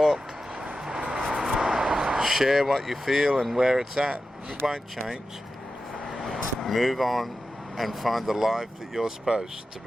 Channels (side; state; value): both; normal; correlation 0.92